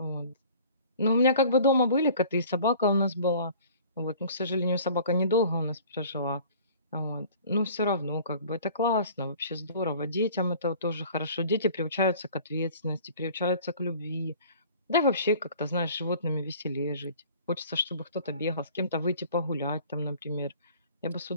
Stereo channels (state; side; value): inverted; both; correlation -0.48